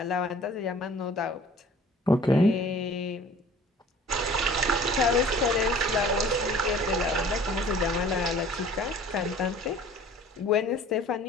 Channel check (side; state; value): both; normal; correlation 0.49